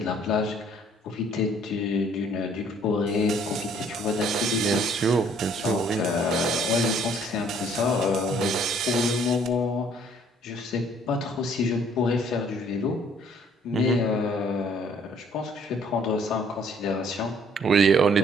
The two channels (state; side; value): normal; both; correlation 0.60